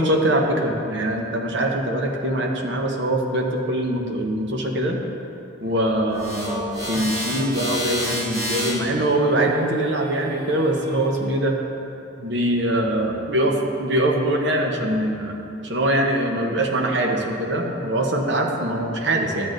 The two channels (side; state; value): both; normal; correlation 0.26